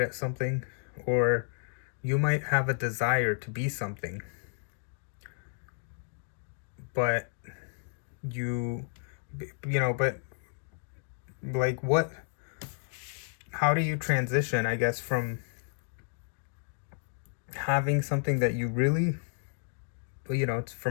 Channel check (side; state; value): right; silent; 57 dB below the other